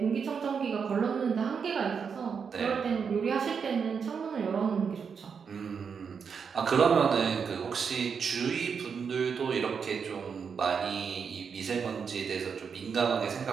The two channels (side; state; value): left; quieter; 6.3 dB